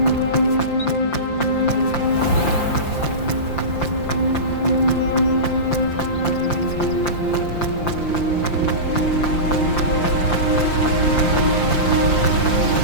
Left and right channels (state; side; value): late; right; 5.8 ms